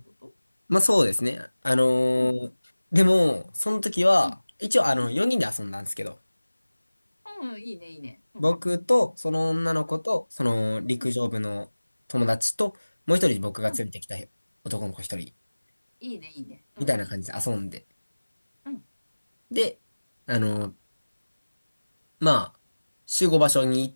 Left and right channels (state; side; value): inverted; both; correlation -1.00